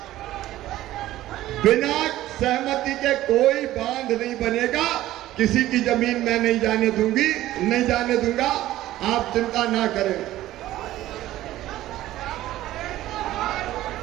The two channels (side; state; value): left; quieter; 14.8 dB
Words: बिना सहमति के कोई बांध नहीं बनेगा। किसी की जमीन मैं नहीं जाने दूंगी, नहीं जाने दूंगा, आप चिंता ना करें।